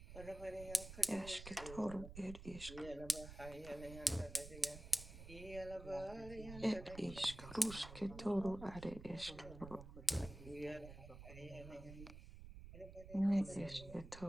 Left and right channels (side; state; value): right; noise; rumble, 13 dB below the sound